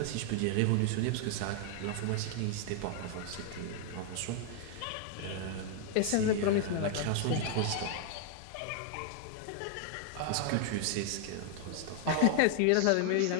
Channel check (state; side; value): different; both; correlation 0.00